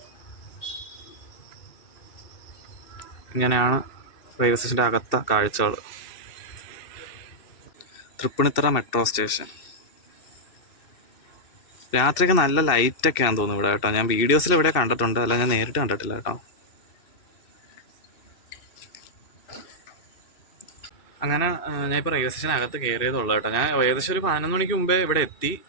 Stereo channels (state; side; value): late; right; 2.6 ms